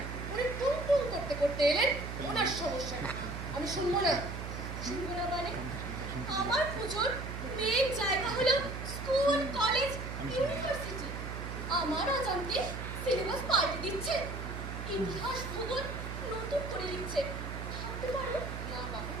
উনি টুম টুম করতে করতে এলেন ওনার সমস্যা। আমি শুনবো না। শুনবো না মানে? আমার পুজোর মেন জায়গা হলো স্কুল, কলেজ, ইউনিভার্সিটি। আমার অজান্তে সিলেবাস পাল্টে দিচ্ছে, ইতিহাস, ভূগোল নতুন করে লিখছে। ভাবতে পারো? না বাবু,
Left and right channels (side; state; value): right; noise; hum, 6 dB below the sound